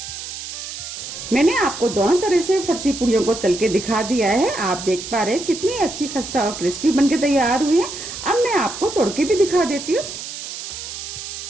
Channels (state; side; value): noise; right; hiss, 9 dB below the sound